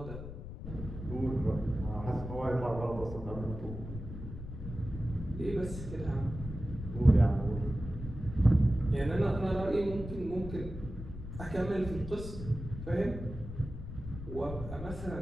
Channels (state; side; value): noise; left; rumble, 9 dB below the sound